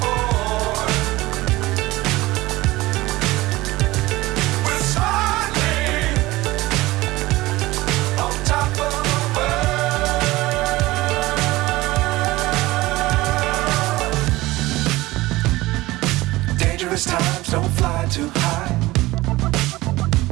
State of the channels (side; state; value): left; quieter; 19.0 dB